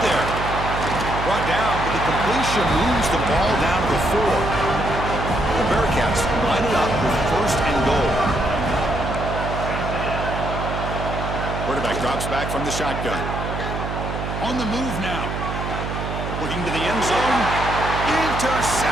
there? Brought down, but the completion moves the ball down to the 4. The Bearcats line it up with 1st and goal. Quarterback drops back from the shotgun. On the move now. Looking to the end zone.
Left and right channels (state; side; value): noise; right; hum, 5 dB below the sound